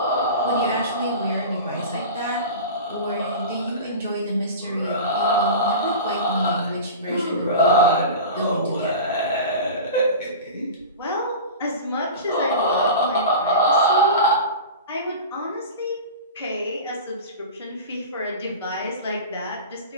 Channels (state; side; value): inverted; both; correlation -0.31